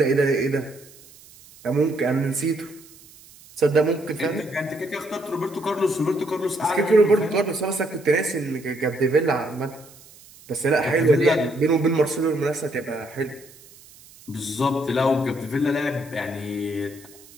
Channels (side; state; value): right; noise; hiss, 23 dB below the sound